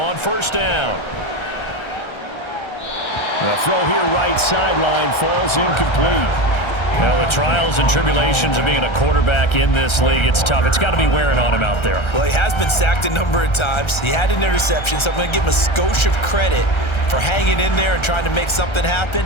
first down. The throw here right sideline falls incomplete. Well, the trials and tribulations of being a quarterback in this league, it's tough. It's got to be wearing on him out there. Well, he has been sacked a number of times. He had an interception, so I'm going to give him a skosh of credit for hanging in there and trying to make something happen,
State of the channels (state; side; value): late; right; 1.3 ms